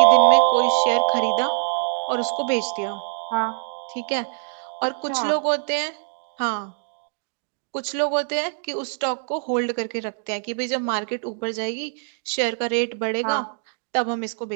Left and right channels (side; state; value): left; silent; digital silence